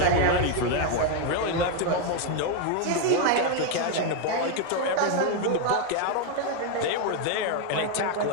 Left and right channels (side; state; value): both; different; correlation 0.01